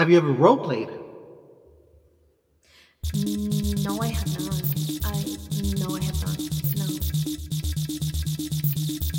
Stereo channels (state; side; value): identical; both; correlation 1.00